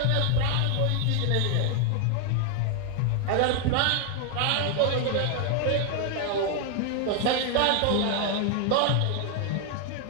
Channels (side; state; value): both; different; correlation 0.00